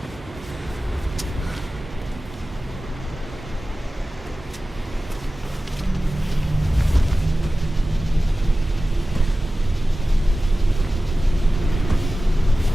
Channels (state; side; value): normal; both; correlation 0.95